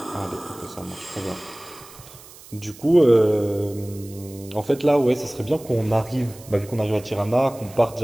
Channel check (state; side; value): noise; right; hiss, 20 dB below the sound